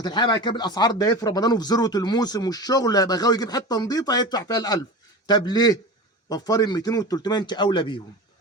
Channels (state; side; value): normal; both; correlation 0.30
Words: بعد كده بالاسعار ده في رمضان وفي ذروه الموسم والشغل هيبقى غاوي يجيب حته نظيفه هيدفع فيها ال 1000. طب ليه؟ وفري ال 200 وال 300 انت اولى بيهم.